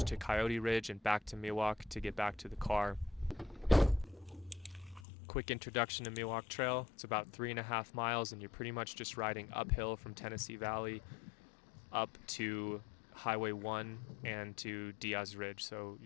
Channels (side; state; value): right; drops out; at 5.1 s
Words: to Coyote Ridge and back to Miwok to get back to the car. Quick introduction to Miwok Trail. It's about 3.5 miles and you're pretty much just riding uphill from Tennessee Valley up to Highway 1 and to Diaz Ridge. So